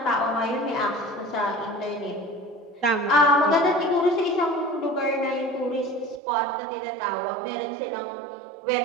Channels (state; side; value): drops out; left; at 6.2 s